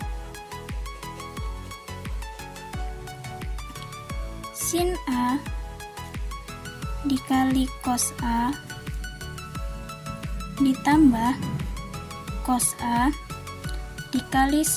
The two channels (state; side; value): identical; both; correlation 1.00